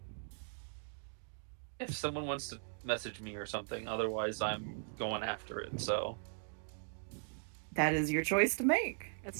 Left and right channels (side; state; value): left; silent; digital silence